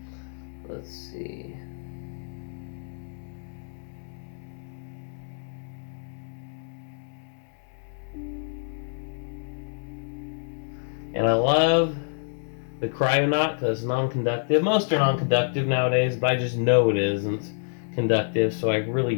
Let's see. And I love the Cryonaut because it's non-conductive. Most are non-conductive nowadays, but I just know it isn't conductive, so I really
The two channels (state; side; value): silent; right; digital silence